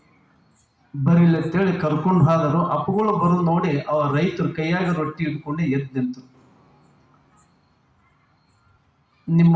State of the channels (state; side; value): identical; both; correlation 1.00